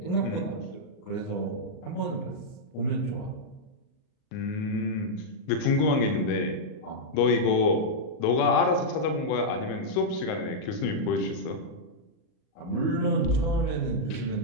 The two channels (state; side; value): late; right; 38 ms